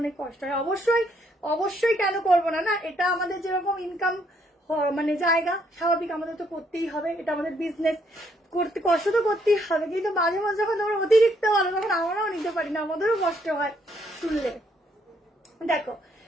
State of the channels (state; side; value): normal; both; correlation 0.71